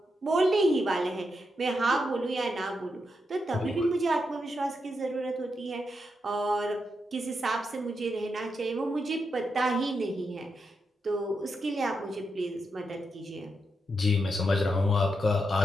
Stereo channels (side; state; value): both; normal; correlation 0.84